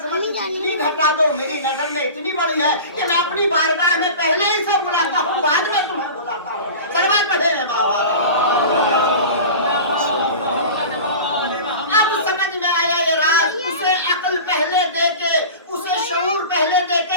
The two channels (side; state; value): both; inverted; correlation -0.34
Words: اتنی گھٹا دو، میری نظر میں اتنی بڑی ہے کہ میں اپنی بارگاہ میں پہلے ہی سے بلاتا ہوں، بعد میں تمہیں بلاتا ہوں۔ سلوات پڑھے ہیں بابا۔ اب سمجھ میں آیا یہ راز، اسے عقل پہلے دے کے، اسے شعور پہلے دے